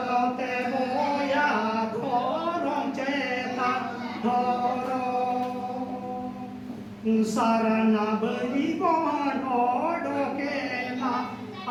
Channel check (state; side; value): identical; both; correlation 1.00